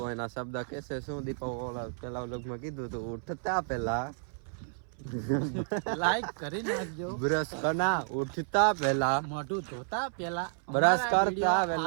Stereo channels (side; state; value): left; silent; 57 dB below the other